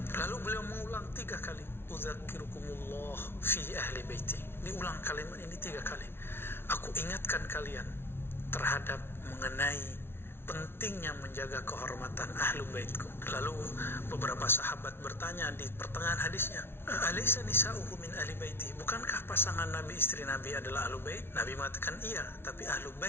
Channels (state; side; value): late; right; 0.11 ms